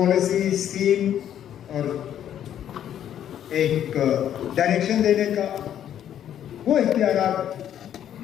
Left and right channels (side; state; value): right; quieter; 10.3 dB